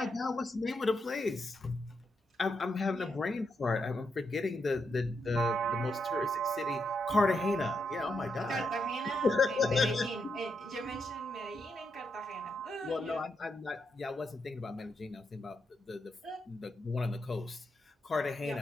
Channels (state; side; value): normal; both; correlation 0.82